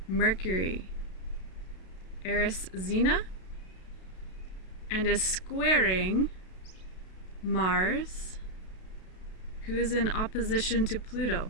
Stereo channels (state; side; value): late; right; 32 ms